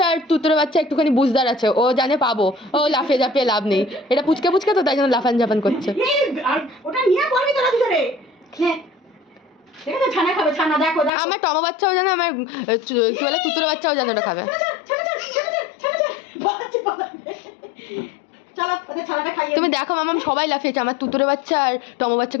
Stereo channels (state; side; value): drops out; right; at 11.1 s